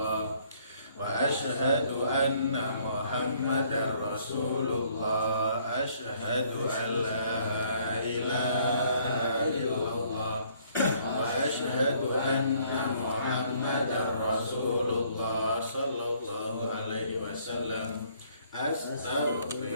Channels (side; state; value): both; inverted; correlation -0.63